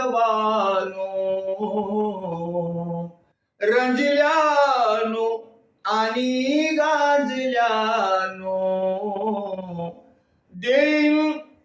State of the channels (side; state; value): both; identical; correlation 1.00